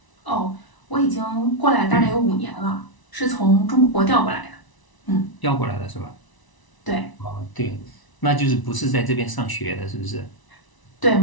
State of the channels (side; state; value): right; late; 1.0 ms